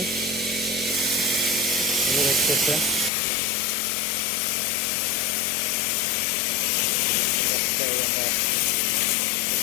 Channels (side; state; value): right; drops out; at 3.1 s